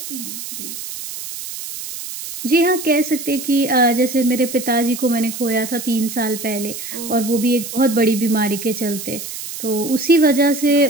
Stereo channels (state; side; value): noise; right; hiss, 9 dB below the sound